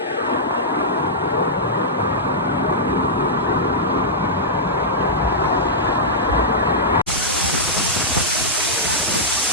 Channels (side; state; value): both; normal; correlation -0.12